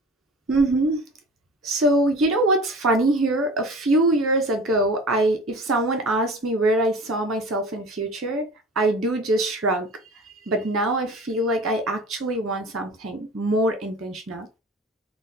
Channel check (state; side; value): normal; both; correlation 0.40